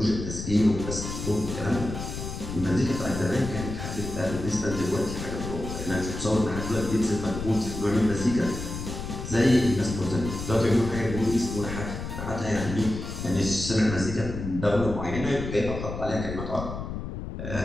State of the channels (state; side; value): noise; left; rumble, 7 dB below the sound